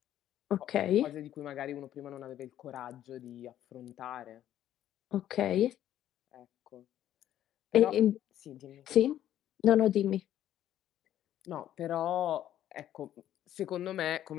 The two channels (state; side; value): quieter; right; 11.8 dB